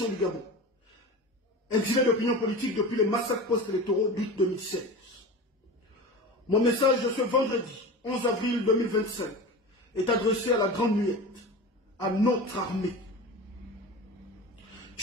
du Gabon, exilé d'opinion politique depuis les massacres post-électoraux d'août 2016. Mon message de ce vendredi 11 avril 2025 est adressé à la Grande Muette, à notre armée.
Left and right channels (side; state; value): both; normal; correlation 0.31